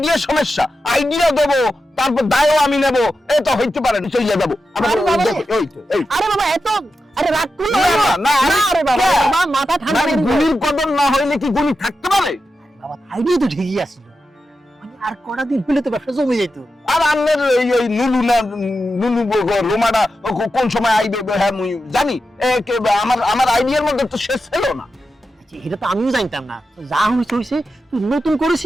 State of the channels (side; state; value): both; normal; correlation 0.90